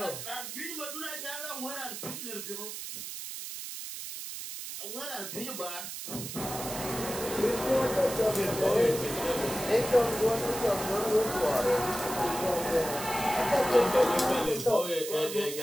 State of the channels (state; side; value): noise; right; hiss, 8 dB below the sound